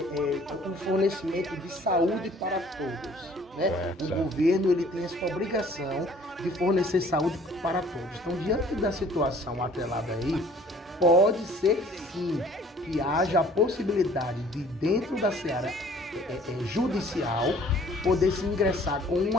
um fornecimento de saúde para todos. Né? O governo ele tem essa obrigação de fornecer saúde para todos. Então, diante da situação atrelada aí, pode ser sim que haja a possibilidade de, dentro da seara judicial, poder se ingressar com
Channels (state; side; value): normal; both; correlation 0.55